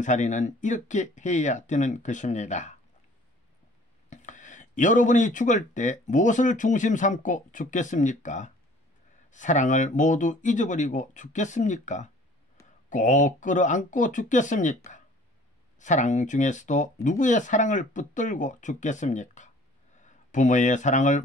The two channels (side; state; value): both; normal; correlation 0.52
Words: 이렇게 해야 되는 것입니다. 여러분이 죽을 때 무엇을 중심 삼고 죽겠습니까? 사랑을 모두 잊어버리고 죽겠습니까? 꼭 끌어안고 죽겠습니까? 사랑 중에서도 누구의 사랑을 붙들고 죽겠습니까? 부모의 사랑을